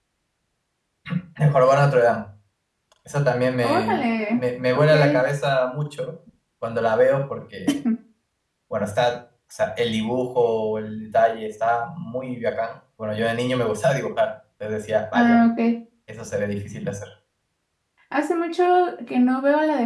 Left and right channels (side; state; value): both; identical; correlation 1.00